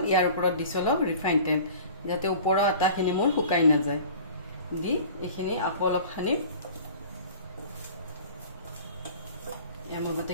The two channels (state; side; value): inverted; both; correlation -0.44